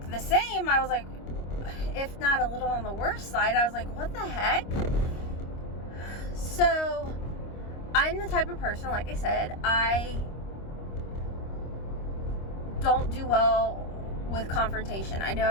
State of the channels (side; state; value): right; late; 25 ms